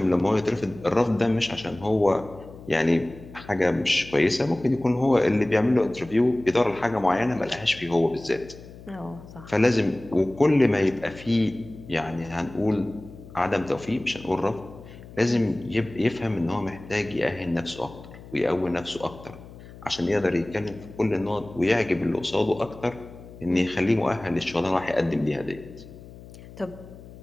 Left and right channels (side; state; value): left; noise; hum, 18 dB below the sound